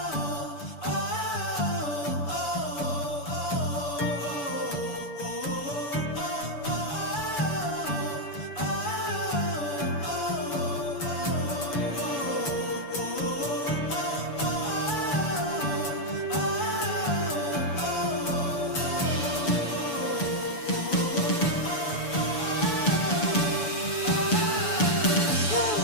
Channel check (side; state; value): right; late; 7.0 ms